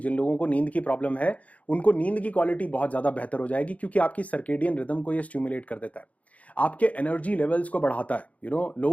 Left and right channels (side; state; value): right; late; 0.068 ms